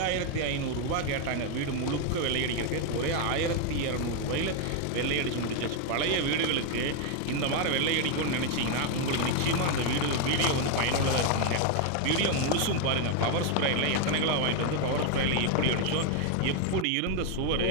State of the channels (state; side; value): different; both; correlation 0.01